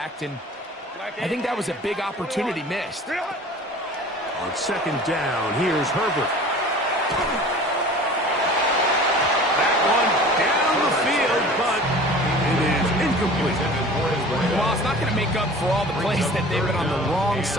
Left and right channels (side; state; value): both; normal; correlation 0.42